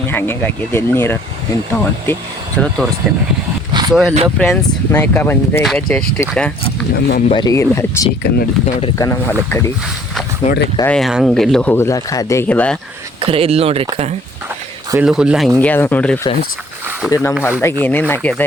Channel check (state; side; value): normal; both; correlation 0.57